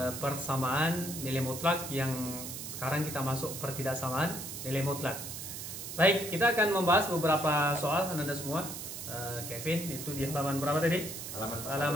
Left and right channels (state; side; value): noise; right; hiss, 8 dB below the sound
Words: persamaan nilai mutlak yang sekarang kita masuk pertidaksamaan nilai mutlak. Baik, kita akan membahas beberapa soal anak-anak semua. Kevin, itu di halaman berapa tadi?